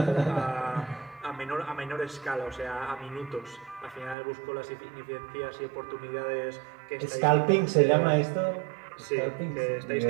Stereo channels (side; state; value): left; drops out; at 4.2 s